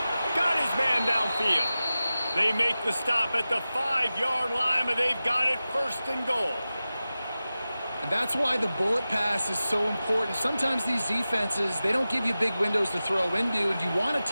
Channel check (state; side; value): inverted; both; correlation -0.95